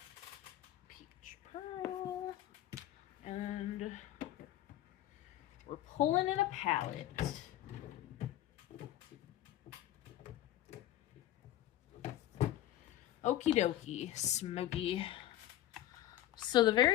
And we're pulling in a palette. Okie dokie, smoky. So the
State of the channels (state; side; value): quieter; right; 13.7 dB